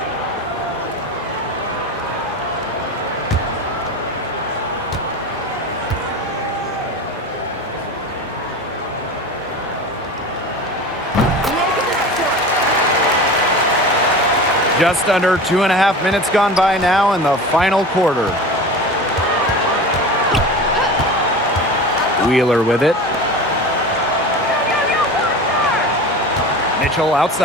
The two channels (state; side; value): normal; both; correlation 0.32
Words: Just under 2.5 minutes gone by now in the final quarter. Wheeler with it. Mitchell